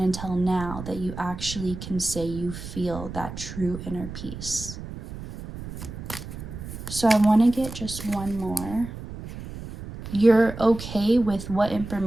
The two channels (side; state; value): right; noise; rumble, 10 dB below the sound